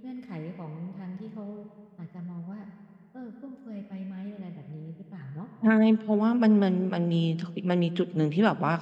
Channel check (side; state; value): both; identical; correlation 1.00